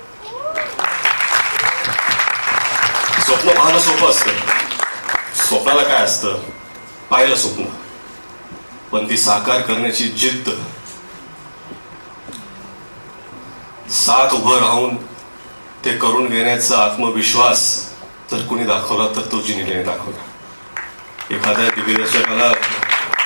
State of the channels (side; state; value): both; inverted; correlation -1.00